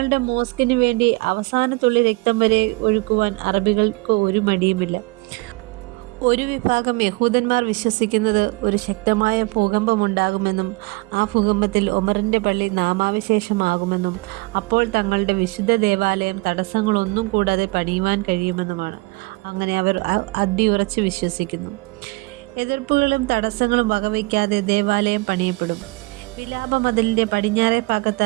മോസ്കിന് വേണ്ടി അവസാനത്തുള്ളി രക്തം വരെ ഒഴുക്കുവാൻ അറബികൾക്ക് ഒരു മടിയുമില്ല. ഒരു വിഭാഗം യഹൂദന്മാർ വിശ്വസിക്കുന്നത് ഒരു ശക്തമായ ഭൂകമ്പമുണ്ടാകുമെന്നും ആ ഭൂകമ്പത്തിൽ ഒമറിൻ്റെ പള്ളി നാമാവിശേഷമാകുമെന്നും അപ്പോൾ തങ്ങളുടെ വിശുദ്ധ ദേവാലയം തടസ്സങ്ങളൊന്നും കൂടാതെ പണിയുവാൻ കഴിയുമെന്നുമാണ്. അങ്ങനെ അവർ അടിയുറച്ച് വിശ്വസിക്കുന്നു. എതിർപ്പുകളും തടസ്സങ്ങളും വകവയ്ക്കാതെ ദേവാലയം പണിയപ്പെടും. വിലാപ മതിലിൻ്റെ പടിഞ്ഞാറേ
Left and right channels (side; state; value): left; quieter; 25.2 dB